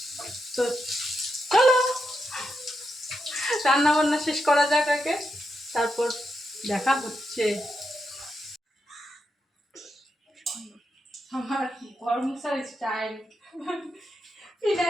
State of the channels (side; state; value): both; normal; correlation 0.85